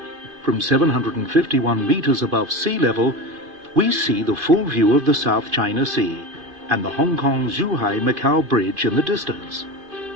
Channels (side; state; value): left; late; 2.5 ms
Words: From 751 meters above sea level, we see the full view of the South China Sea and the Hong Kong-Zhuhai-Macau Bridge in the distance.